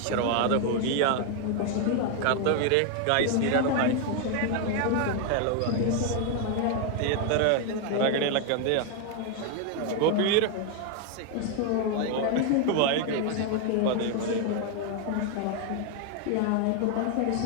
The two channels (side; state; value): both; different; correlation 0.01